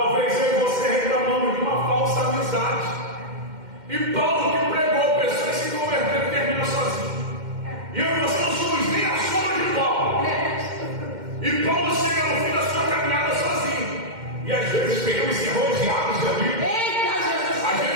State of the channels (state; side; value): late; left; 2.1 ms